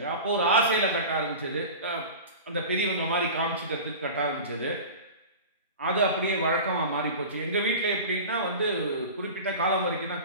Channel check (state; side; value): inverted; both; correlation -0.33